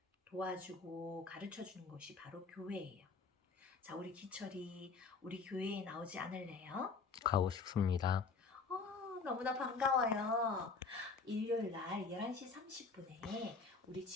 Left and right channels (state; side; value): quieter; right; 4.6 dB